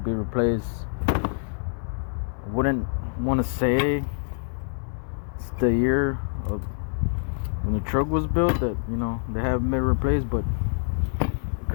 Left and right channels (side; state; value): right; silent; digital silence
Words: replaced. I wouldn't want to say it's the year of when the truck was built that, you know, they haven't been replaced, but it